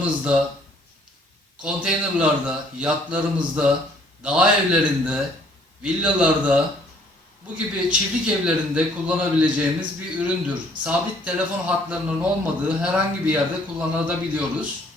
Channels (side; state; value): both; normal; correlation 0.61